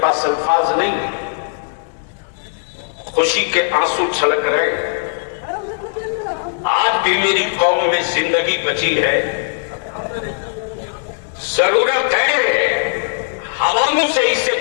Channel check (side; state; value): right; silent; 62 dB below the other